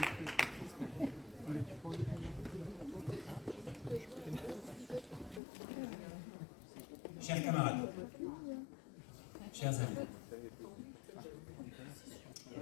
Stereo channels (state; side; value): drops out; right; at 5.4 s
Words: Chers camarades, chers amis,